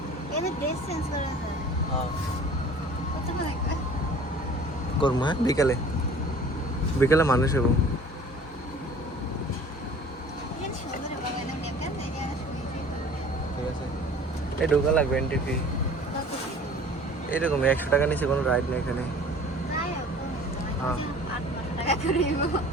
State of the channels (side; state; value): both; normal; correlation 0.47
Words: হ্যাঁ করবো, হ্যাঁ বিকালে বিকালে মানুষ এবং ঠিক আছে। এই ঢোকা লাগবে এন্ট্রি ফি এরকম 100 টাকা নিচে কোনো রাইড নেই এখানে। হ্যাঁ